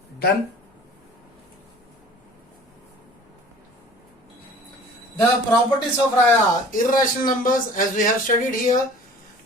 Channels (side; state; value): both; normal; correlation 0.46